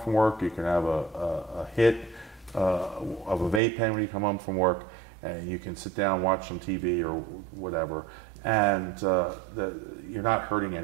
work. You can have a hit of a vape pen when you come home from work, and you can sit down, watch some TV or whatever, and you're not hurting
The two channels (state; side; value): drops out; left; at 3.6 s